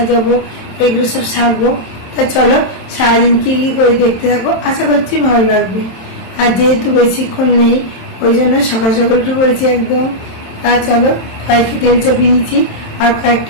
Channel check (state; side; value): late; right; 27 ms